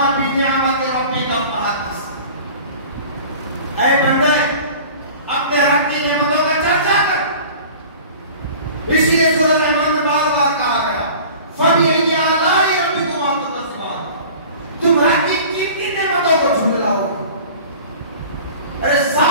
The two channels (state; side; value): inverted; both; correlation -0.42